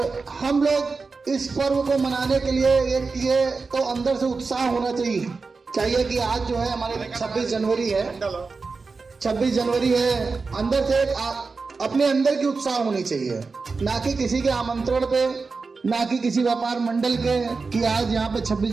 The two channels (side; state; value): left; quieter; 4.4 dB